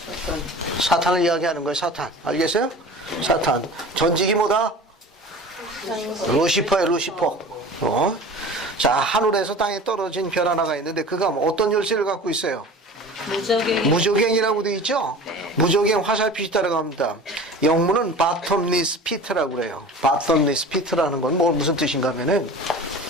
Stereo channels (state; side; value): normal; both; correlation 0.39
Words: 사탄을 이야기하는 거예요. 사탄. 알겠어요? 사탄. 전직이 뭐다? 루시퍼예요. 루시퍼. 자, 하늘에서 땅에 떨어진 별 하나가 있는데 그가 어떤 열쇠를 갖고 있어요? 무저갱이라고 되어 있죠? 무저갱 화살표시 따라갑니다. 영문은 바텀리스 피트라고 그래요. 바텀리스 피트라는 건 무슨 뜻인가 하면은,